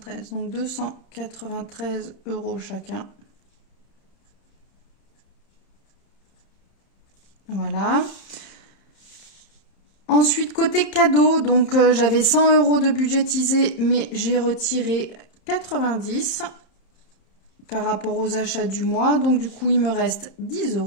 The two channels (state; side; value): late; right; 31 ms